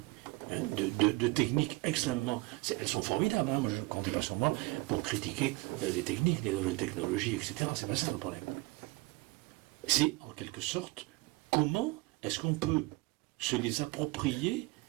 hein, de techniques extrêmement... Elles sont formidables, hein, moi je ne comptais pas sur moi pour critiquer les techniques, les nouvelles technologies, etc. C'est pas ça le problème. C'est en quelque sorte comment est-ce qu'on peut se les approprier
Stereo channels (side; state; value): left; quieter; 23.0 dB